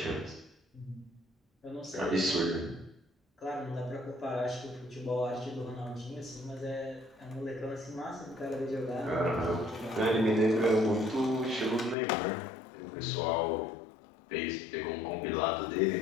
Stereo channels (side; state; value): right; drops out; at 12.0 s